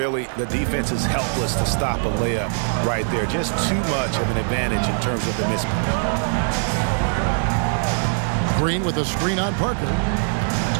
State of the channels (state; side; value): silent; left; 64 dB below the other